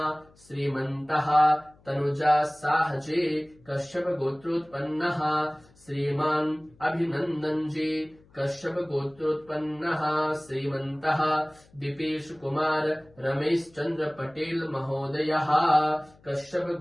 श्रीमन्तः तनुजा साह जी कश्यप गोत्रोत्पन्नः श्रीमान् अभिनंदन जी कश्यप गोत्रोत्पन्नः श्रीमन्तः दीपेश कुमार रमेश चंद्र पटेल महोदयः कश्यप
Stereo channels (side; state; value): left; noise; hum, 29 dB below the sound